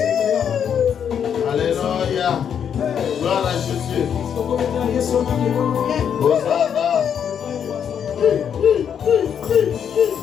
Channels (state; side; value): quieter; right; 8.2 dB